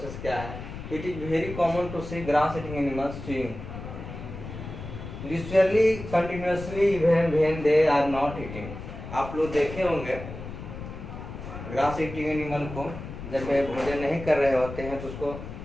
क्या है। It is very common to see grass eating animals chewing literally continuously when they are not eating। आप लोग देखे होंगे ग्रास ईटिंग एनिमल को जब वे भोजन नहीं कर रहे होते हैं तो उसको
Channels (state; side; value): noise; left; rumble, 10 dB below the sound